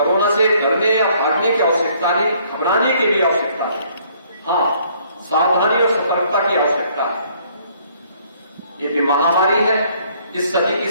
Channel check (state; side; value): inverted; both; correlation -0.63